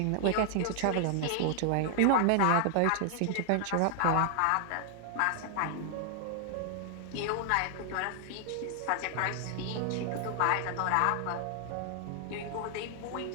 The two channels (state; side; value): different; both; correlation 0.00